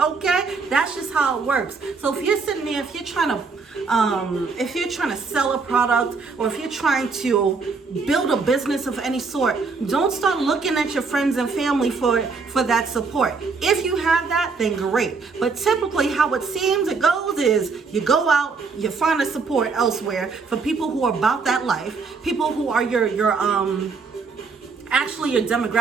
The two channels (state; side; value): quieter; left; 4.7 dB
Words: That's just how it works. So if you're sitting there, if you're trying to sell a product, or if you're trying to build a business of any sort, don't start looking at your friends and family for that support. If you have that, then great. But typically how it seems it goes is you go out, you find a support elsewhere for people who are about that life, people who are actually your